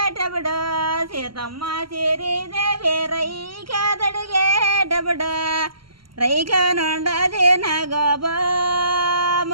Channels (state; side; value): late; left; 0.73 ms